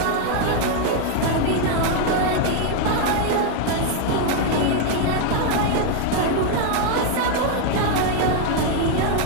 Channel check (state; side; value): different; both; correlation 0.01